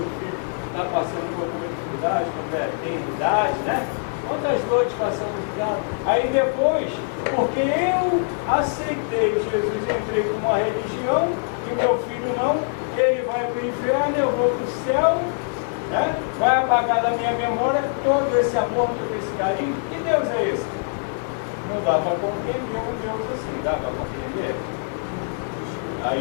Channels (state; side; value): silent; right; 63 dB below the other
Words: filho está passando por alguma dificuldade, quando tem idade, né? Quantas noites passamos de casa? Aí depois, porque eu aceitei Jesus, entrei com uma religião, e o meu filho não, ele vai para o inferno, eu vou para o céu, né? Vai apagar da minha memória todo esse amor, todo esse carinho. Que Deus é esse? Não dá para compreender um Deus assim, dá para compreender?